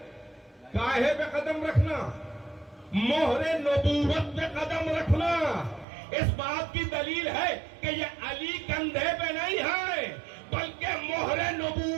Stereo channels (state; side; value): drops out; left; at 5.9 s